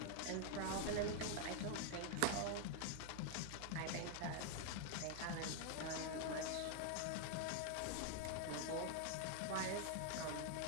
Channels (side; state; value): both; different; correlation 0.00